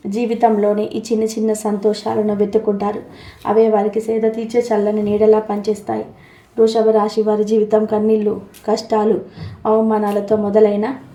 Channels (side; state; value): both; identical; correlation 1.00